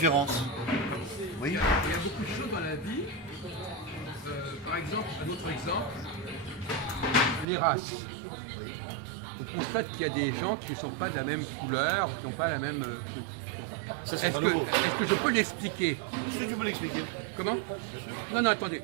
Oui. Il y a beaucoup de choses dans la vie. Par exemple, un autre exemple, les races. On constate qu'il y a des gens qui ne sont pas de la même couleur, qui n'ont pas la même truc. Bon. Est-ce que je peux l'expliquer? Est-ce que tu peux l'expliquer? Comment? Non, non, attendez.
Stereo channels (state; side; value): drops out; left; at 7.5 s